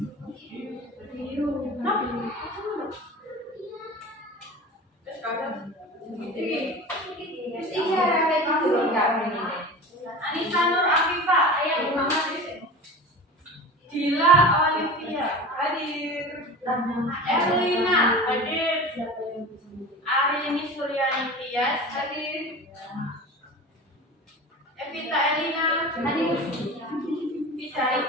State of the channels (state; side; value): normal; both; correlation 0.33